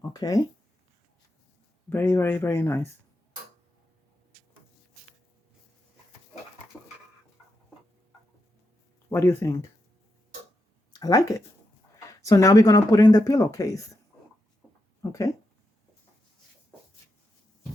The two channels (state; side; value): normal; both; correlation 0.85